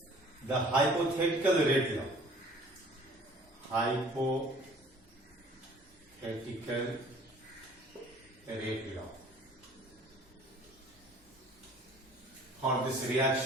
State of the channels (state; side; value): normal; both; correlation 0.51